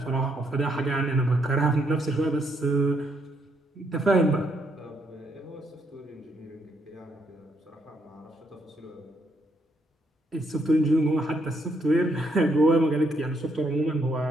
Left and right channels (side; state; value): both; normal; correlation 0.75